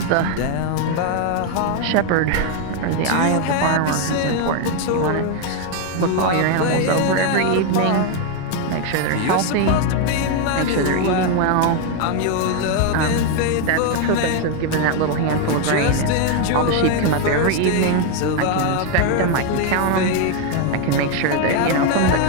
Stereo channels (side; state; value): both; different; correlation 0.01